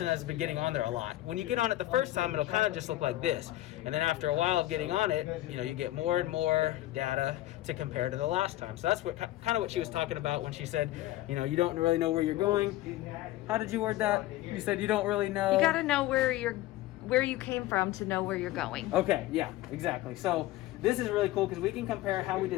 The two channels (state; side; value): quieter; right; 15.9 dB